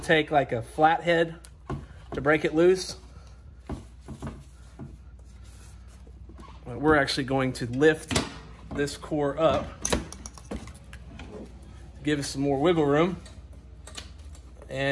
like a flathead to break it loose. But we're actually going to lift this core up, give us some more wiggle room,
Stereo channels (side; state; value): both; identical; correlation 1.00